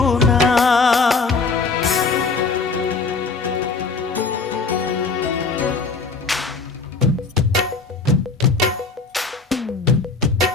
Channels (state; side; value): quieter; right; 4.4 dB